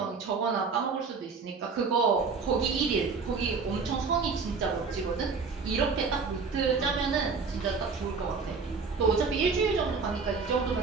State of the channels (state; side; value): quieter; left; 4.9 dB